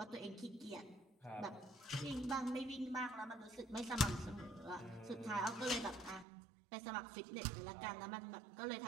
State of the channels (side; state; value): left; drops out; at 6.2 s